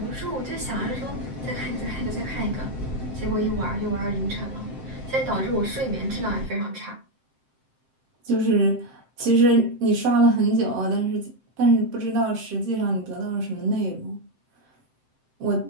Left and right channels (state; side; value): late; left; 7.7 ms